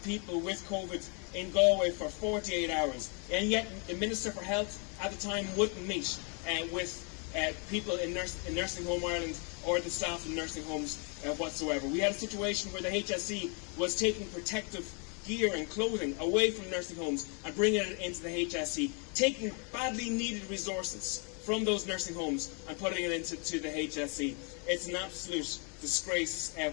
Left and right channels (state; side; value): quieter; right; 36.6 dB